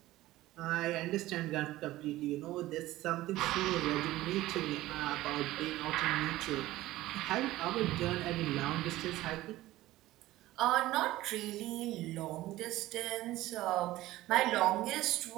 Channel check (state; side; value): quieter; left; 16.5 dB